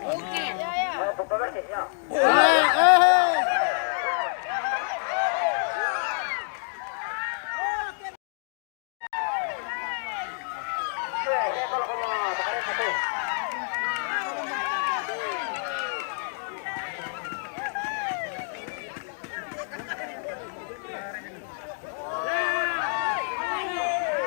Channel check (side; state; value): right; silent; digital silence